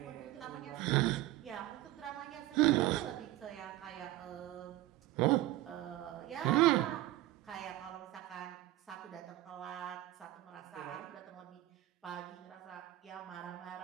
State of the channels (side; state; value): left; quieter; 16.1 dB